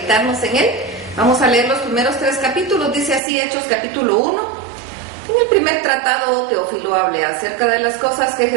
en él. Vamos a leer los primeros 3 capítulos. Dice así Hechos capítulo 1. En el primer tratado, Teófilo hablé acerca de las cosas que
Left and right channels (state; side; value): drops out; left; at 3.2 s